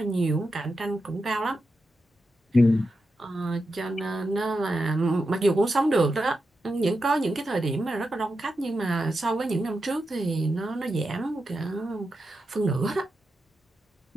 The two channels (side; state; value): both; normal; correlation 0.88